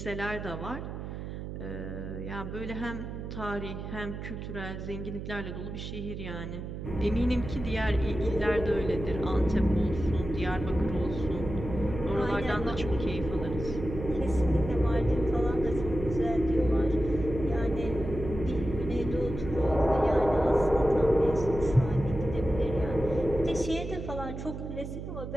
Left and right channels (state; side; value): noise; right; hum, 8 dB below the sound